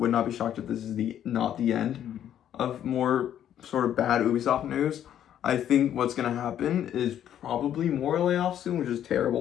not be shocked if this is not the end of more sort of bad Ubisoft news. I think what's going to happen is probably more layoffs soon, which is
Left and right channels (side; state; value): right; quieter; 10.5 dB